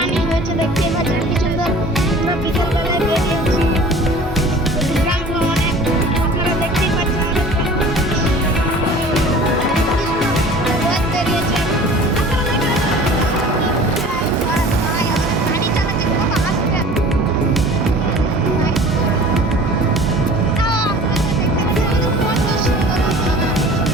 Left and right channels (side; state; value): both; normal; correlation 0.44